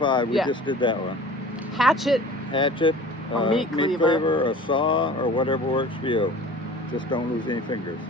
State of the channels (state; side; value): normal; both; correlation 0.43